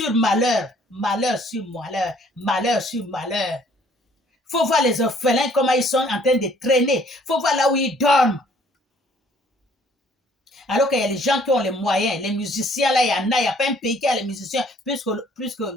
malheur, malheur sur malheur, malheur sur malheur. Il faut voir les orphelins, comment ils sont en train de traîner. Il faut voir là où ils dorment. Alors qu'il y a les gens qui ont les moyens, les musiciens là, il n'y a pas un pays qui a les musiciens plus que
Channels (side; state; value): both; normal; correlation 0.60